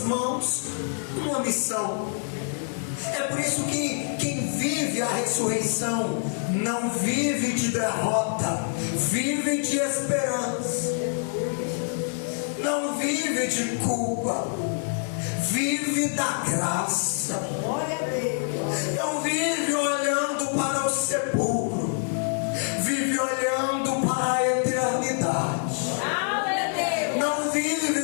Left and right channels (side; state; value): right; silent; 61 dB below the other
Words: mãos uma missão. É por isso que quem vive a ressurreição não vive de derrota, vive de esperança. Não vive de culpa, vive da graça. Não vive olhando para o sepulcro, vive olhando para a eternidade. Não